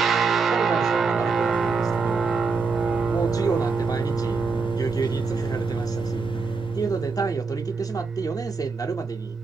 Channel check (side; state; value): left; quieter; 4.6 dB